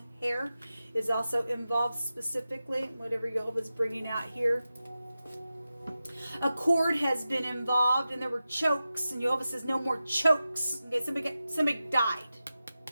hair is also involved specifically, whatever Jehovah's bringing out here. A cord has been involved, and there were chokes, and Jehovah says no more chokes. Okay, somebody died.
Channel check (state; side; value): inverted; both; correlation -0.93